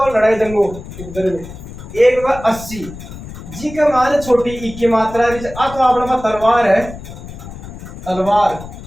लड़ाई दंगो उपद्रव्य। एक वह 80, जी का मान छोटी ई की मात्रा, तो अपना तलवार है, तलवार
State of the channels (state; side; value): noise; left; rumble, 13 dB below the sound